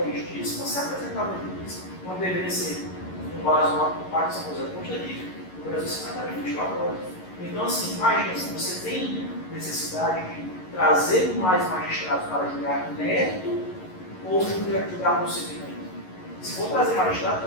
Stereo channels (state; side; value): late; right; 11 ms